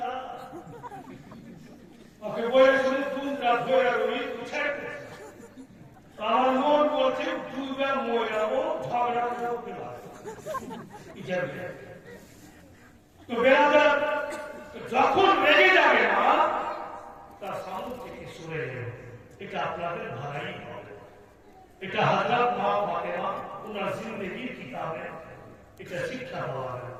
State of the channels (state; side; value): identical; both; correlation 1.00